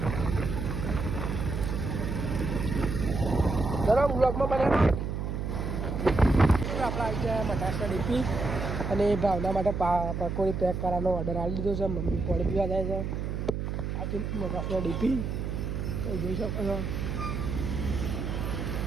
ચલો બ્લોગમાં બને આપણે આવી ગયા મટાસના ડીપી અને ભાવના માટે પકોડી પેક કરવાનો ઓર્ડર આપી દીધો છે મમ્મી પાણી પીવા જાય છે આ તો મટાસના ડીપી જોઈ શકો છો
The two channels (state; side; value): noise; right; hum, 3 dB below the sound